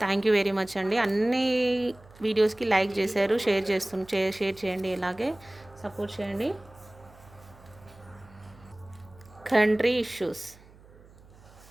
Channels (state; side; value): noise; right; hum, 24 dB below the sound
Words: thank you very much అండి. అన్ని వీడియోస్కి లైక్ చేశారు, షేర్ చేయండి, ఇలాగే సపోర్ట్ చేయండి. కంట్రీ